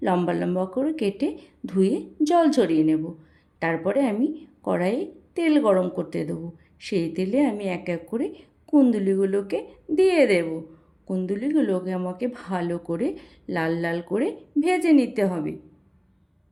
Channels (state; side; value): identical; both; correlation 1.00